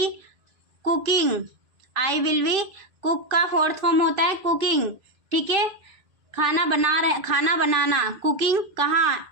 cooking, I will be, cook का फोर्थ फॉर्म होता है कुकिंग। ठीक है, खाना बनाना, कुकिंग कहाँ?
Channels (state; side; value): late; left; 2.5 ms